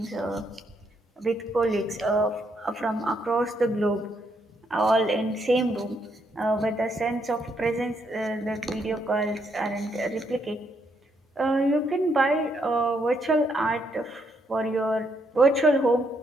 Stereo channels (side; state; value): both; normal; correlation 0.75